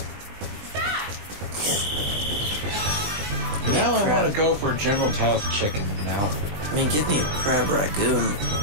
Now I want to go for General Tao's chicken now. I mean, give me a crab ragoon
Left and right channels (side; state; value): left; late; 20 ms